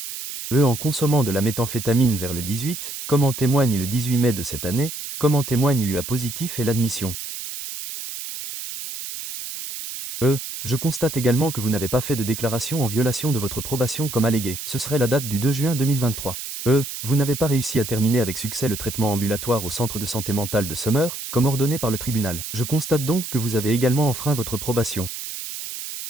En consommant de la méthamphétamine vers le 18, comme en témoigne le 18 mai de cette année, comme en témoigne l'UA positif et l'admission. Je constate également que vous n'avez pas fait de déclaration en violation de votre probation comme allégué. Ce serait la date du 2 juin 2023. Vous n'avez pas réussi à terminer avec succès le traitement ambulatoire au centre de santé mentale de Summer, comme ordonné par le tribunal. Je constate donc que vous avez également enfreint votre probation.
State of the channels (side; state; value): right; noise; hiss, 8 dB below the sound